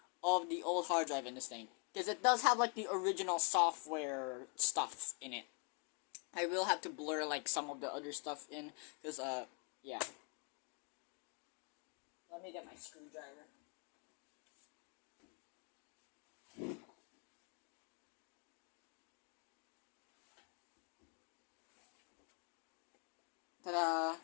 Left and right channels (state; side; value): quieter; right; 37.6 dB